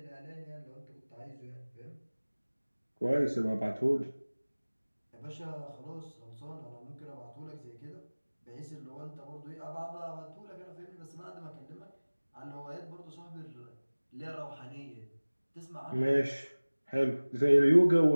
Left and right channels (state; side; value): inverted; both; correlation -1.00